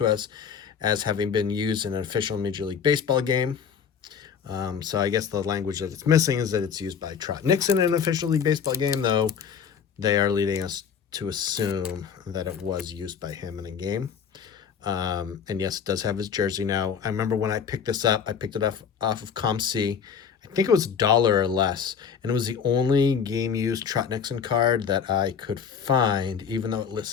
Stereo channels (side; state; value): right; quieter; 7.0 dB